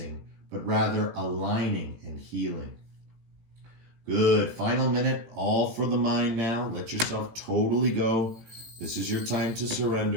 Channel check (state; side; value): late; left; 18 ms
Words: but rather aligning and healing. Good. Final minute, all for the mind now. Let yourself totally go. This is your time to